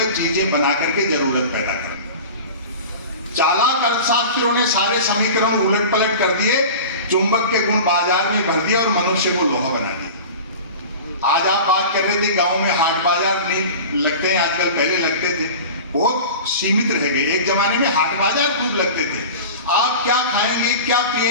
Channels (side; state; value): both; inverted; correlation -0.35